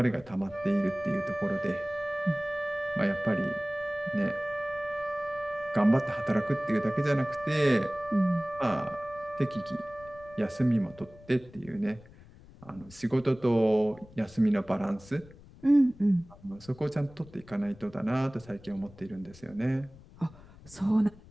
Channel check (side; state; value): left; noise; rumble, 22 dB below the sound